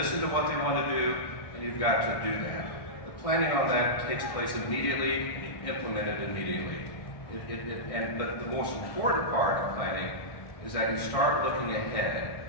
to what they want to do, and you've got to do that. The planning on that takes place immediately, and you implement it immediately. But the most important part of planning is that you start looking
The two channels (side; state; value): right; late; 1.6 ms